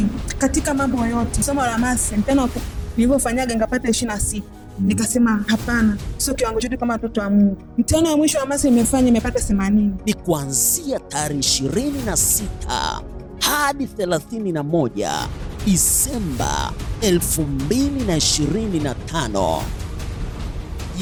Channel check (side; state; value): both; identical; correlation 1.00